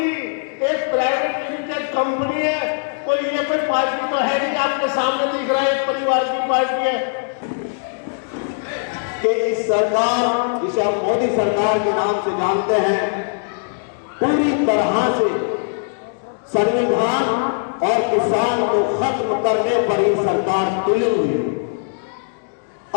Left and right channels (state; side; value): silent; right; digital silence